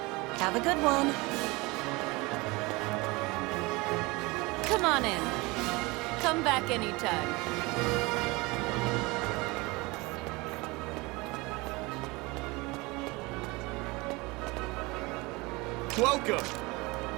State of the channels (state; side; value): quieter; left; 24.1 dB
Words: Have a good one. Come on in. Come back anytime. Welcome!